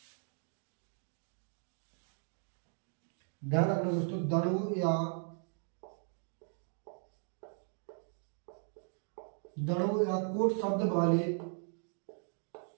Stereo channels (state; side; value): silent; left; 53 dB below the other